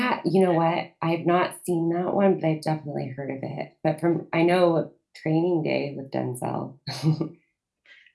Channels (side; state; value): both; identical; correlation 1.00